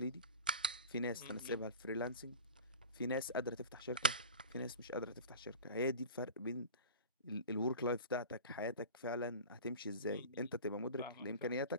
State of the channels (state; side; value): inverted; both; correlation -0.34